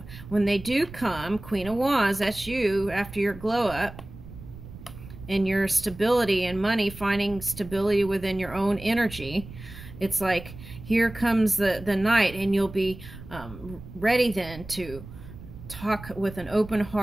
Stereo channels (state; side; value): noise; right; rumble, 15 dB below the sound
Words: When they do come, Queen of Wands, that's you after your glow up and your stability and money, finding stability within your own energy. It's like, here comes the knight, and you'll be ready then to talk with an open